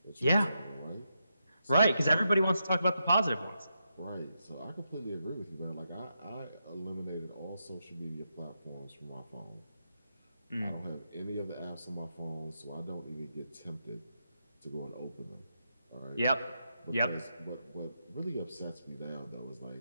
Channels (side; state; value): both; inverted; correlation -0.84